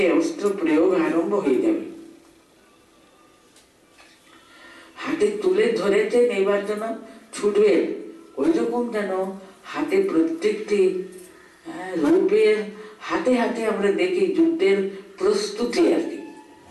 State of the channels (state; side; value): identical; both; correlation 1.00